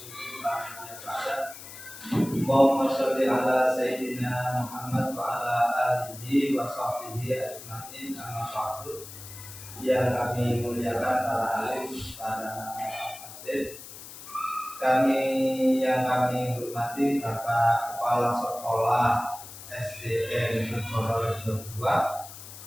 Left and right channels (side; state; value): left; noise; hiss, 14 dB below the sound